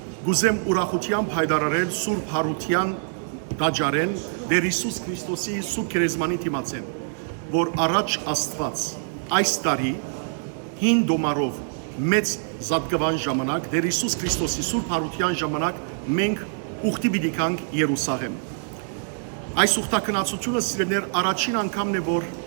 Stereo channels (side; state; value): left; silent; digital silence